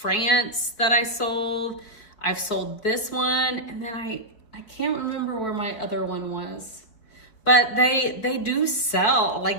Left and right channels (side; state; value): right; late; 4.6 ms